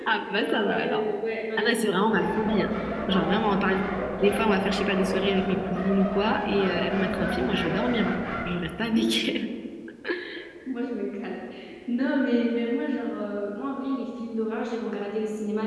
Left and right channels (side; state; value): both; identical; correlation 1.00